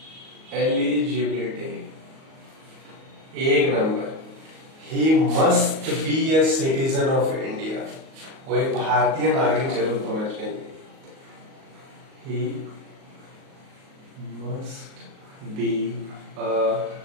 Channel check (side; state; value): left; late; 38 ms